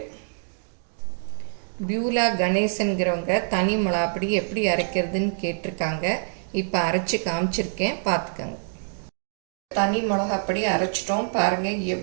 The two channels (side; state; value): left; silent; digital silence